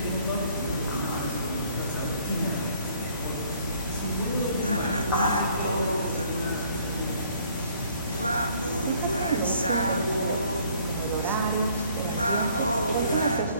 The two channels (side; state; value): both; inverted; correlation -0.59